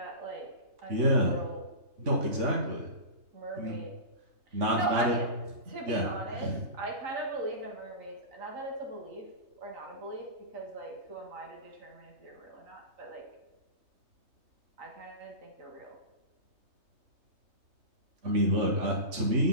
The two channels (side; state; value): left; late; 3.3 ms